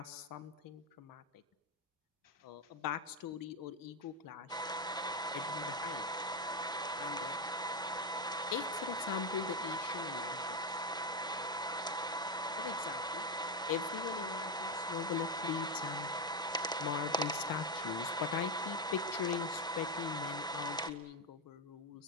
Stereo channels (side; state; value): both; normal; correlation 0.09